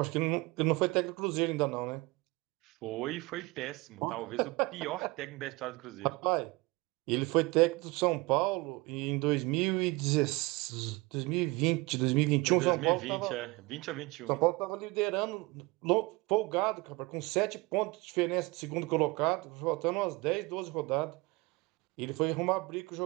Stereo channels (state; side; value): quieter; left; 23.6 dB